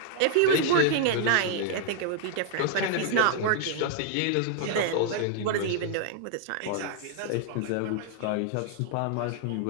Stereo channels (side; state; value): both; different; correlation -0.01